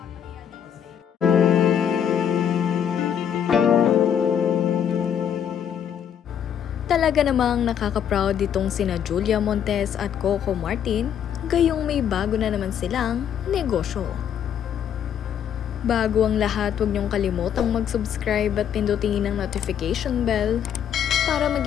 dito sa inyo. Talaga namang nakaka-proud ditong sina Julia Montes at Coco Martin, gayong may bago na naman silang negosyo. Bago ang lahat, huwag niyong kalimutang mag-subscribe at pindutin ang notification bell para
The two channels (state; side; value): quieter; right; 8.9 dB